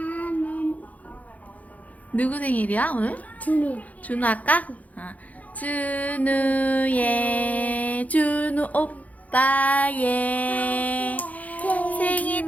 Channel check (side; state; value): right; late; 0.074 ms